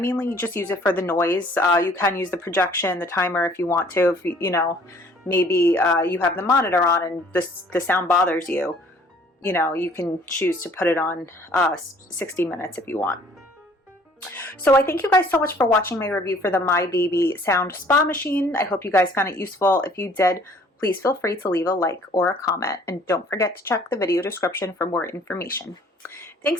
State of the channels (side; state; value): both; normal; correlation 0.56